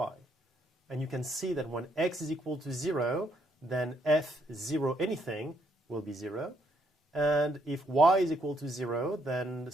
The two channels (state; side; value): normal; both; correlation 0.73